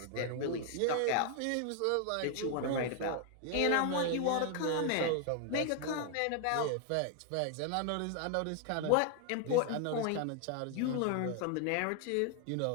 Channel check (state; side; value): different; both; correlation 0.00